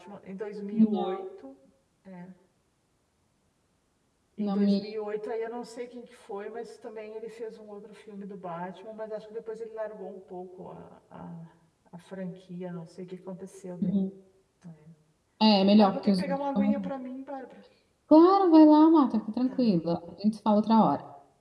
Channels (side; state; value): both; identical; correlation 1.00